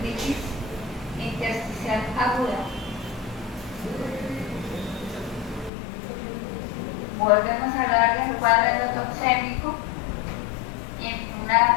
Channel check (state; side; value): drops out; right; at 5.7 s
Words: intersticial aguda. Volvemos a hablar del cuadro endotoxémico y una